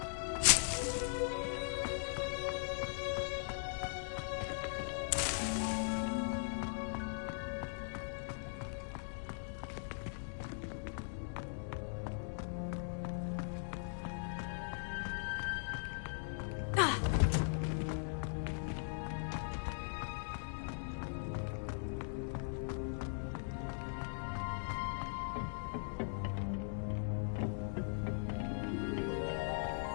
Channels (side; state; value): right; silent; digital silence